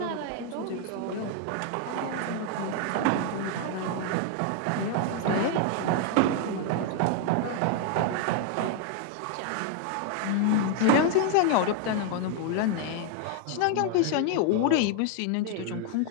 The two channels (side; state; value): both; different; correlation 0.00